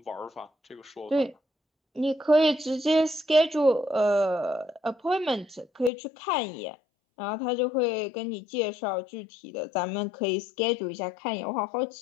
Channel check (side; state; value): right; drops out; at 5.9 s